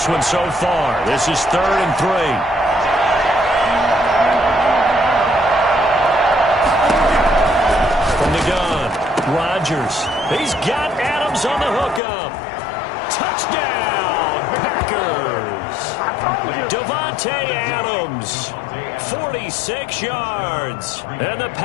one so far. This is 3rd and 3. From the gun, Rodgers. He's got Adams on the hookup. Touchdown, Packers. Devontae Adams, 46 yards. And the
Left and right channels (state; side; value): drops out; right; at 12.0 s